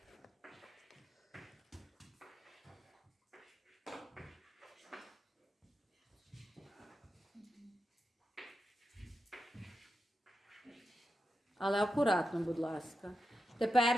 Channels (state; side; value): normal; both; correlation 0.89